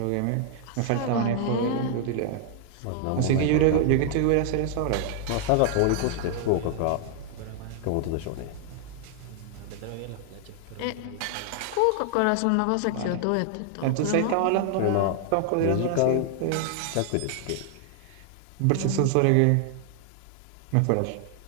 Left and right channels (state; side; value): different; both; correlation 0.00